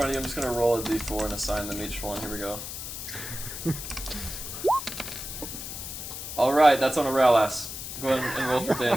of you. I'm just gonna roll a d4 and assign them each one. Here we go. Alright, that's on Aurelius. Go ahead and roll for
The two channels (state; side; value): noise; left; hiss, 8 dB below the sound